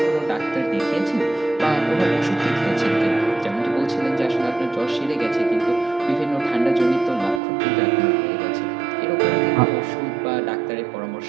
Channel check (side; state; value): left; drops out; at 7.4 s